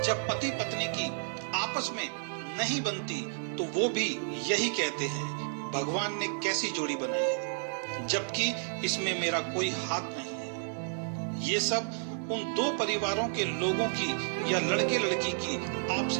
जब पति पत्नी की आपस में नहीं बनती तो वो भी यही कहते हैं, भगवान ने कैसी जोड़ी बनाई है, जबकि इसमें मेरा कोई हाथ नहीं है। ये सब उन दो परिवारों के लोगों की या लड़के लड़की की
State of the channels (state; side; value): silent; left; digital silence